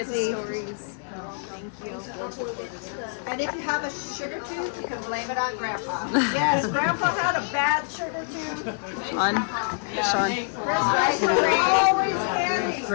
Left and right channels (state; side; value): silent; right; digital silence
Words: safely. stories. And if you have a sugar tooth, you can blame it on Grandpa. Yes, Grandpa had a bad sugar tooth. On. Sean. Right, always candy.